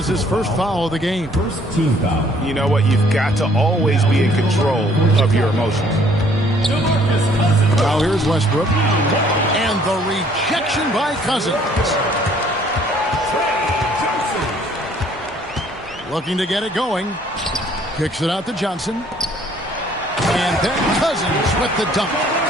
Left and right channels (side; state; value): both; normal; correlation 0.60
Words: his first foul of the game. First team foul. You know what? You've got to always be in control of your emotions. Now here's Westbrook. And the rejection by Cousins. Looking to get it going. Kicks it out to Johnson. And then Cousins with the dunk.